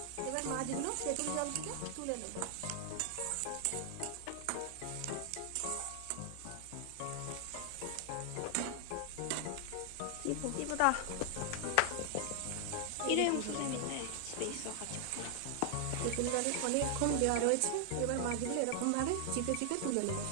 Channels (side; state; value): both; different; correlation 0.00